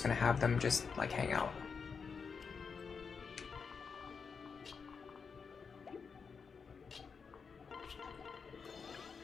going to have them just, like, hang out.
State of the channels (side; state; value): right; quieter; 5.6 dB